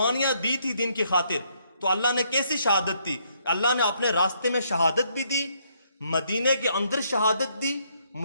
دی تھی دین کی خاطر، تو اللہ نے کیسی شہادت دی؟ اللہ نے اپنے راستے میں شہادت بھی دی، مدینے کے اندر شہادت دی،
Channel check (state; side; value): inverted; both; correlation -0.71